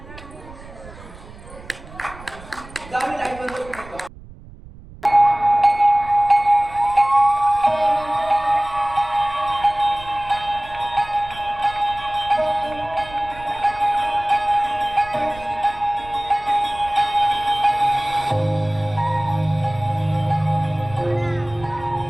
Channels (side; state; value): right; noise; rumble, 18 dB below the sound